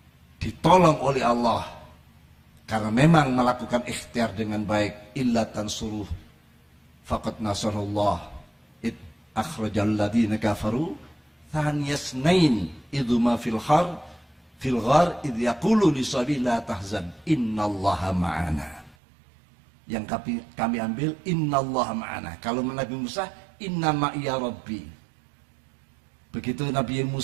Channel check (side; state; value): left; drops out; at 18.9 s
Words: ditolong oleh Allah karena memang melakukan ikhtiar dengan baik. Illa tansuruh faqad nasarullah id akhrajal ladzina kafaru thaniyasnain idhuma fil ghar idh yaqulu li sahibihi la tahzan innallaha ma'ana. Yang kami ambil innallaha ma'ana. Kalau Nabi Musa inna ma'iya rabbi. Begitu Nabi